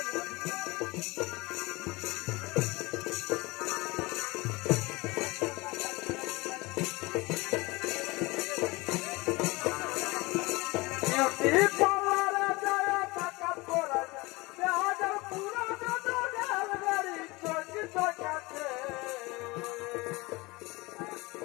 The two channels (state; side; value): quieter; right; 23.3 dB